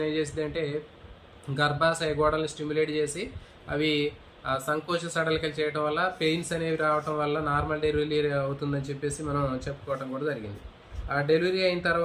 ఏం చేసింది అంటే గర్భాశయ గోడలను స్టిమ్యులేట్ చేసి అవి సంకోచ సడలికలు చేయడం వల్ల పెయిన్స్ అనేవి రావడం వల్ల నార్మల్ డెలివరీ అవుతుందని చెప్పేసి మనం చెప్పుకోవడం కూడా జరిగింది. ఆ డెలివరీ అయిన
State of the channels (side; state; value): both; identical; correlation 1.00